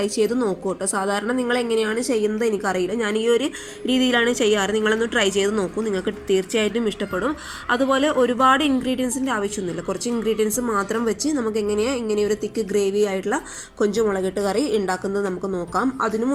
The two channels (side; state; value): both; identical; correlation 1.00